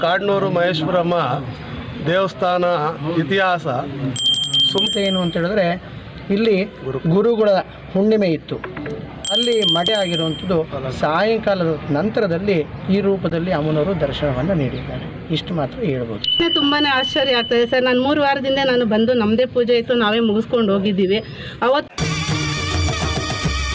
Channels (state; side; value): identical; both; correlation 1.00